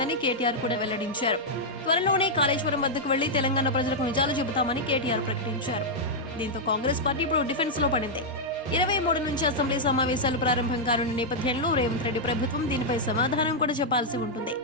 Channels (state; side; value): normal; both; correlation -0.05